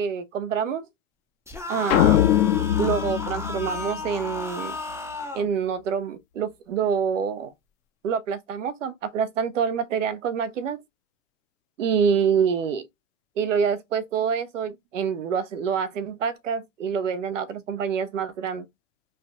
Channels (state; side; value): normal; both; correlation 0.22